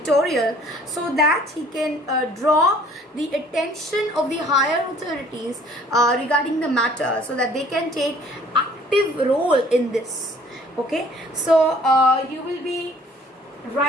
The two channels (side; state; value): both; normal; correlation 0.56